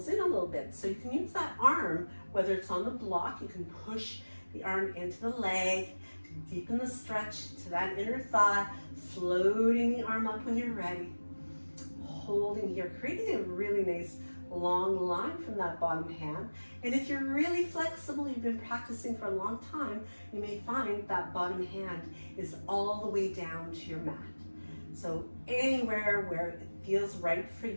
in a little bit. So you can use that arm, whether it's on the block, you can push the arm into the leg, to deepen the stretch to that inner thigh, floating the arm up when you're ready, holding here, creating a really nice long line from that bottom hand. And if you're really flexible, you've been practicing for a long time, you may find that bottom hand is all the way down to your mat. So anywhere where it feels right for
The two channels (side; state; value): both; inverted; correlation -1.00